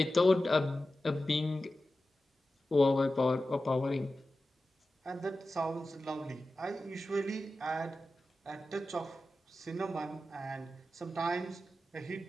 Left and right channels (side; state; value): both; normal; correlation 0.93